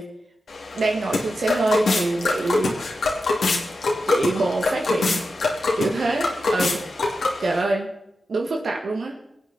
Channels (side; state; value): both; normal; correlation 0.90